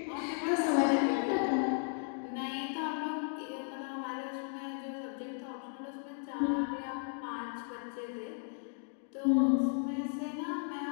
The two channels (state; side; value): silent; right; 54 dB below the other